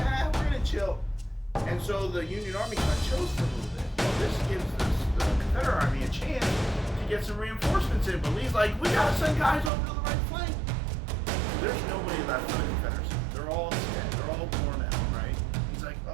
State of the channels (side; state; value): left; drops out; at 9.7 s